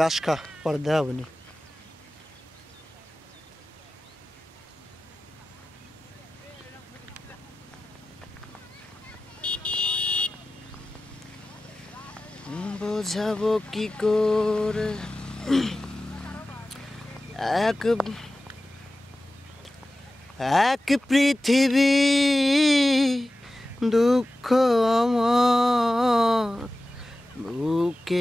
খা পরে দেওয়া হবে নি বোঝাবো কি করে এক পৃথিবী দুঃখ আমার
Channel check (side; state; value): both; normal; correlation 0.95